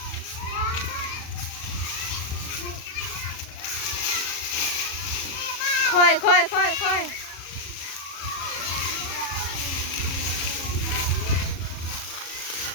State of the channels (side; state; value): right; late; 37 ms